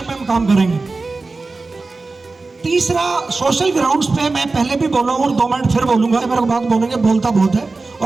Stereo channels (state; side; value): quieter; left; 3.7 dB